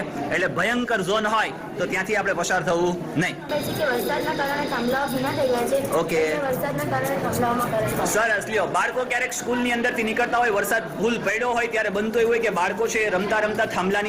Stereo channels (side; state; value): both; identical; correlation 1.00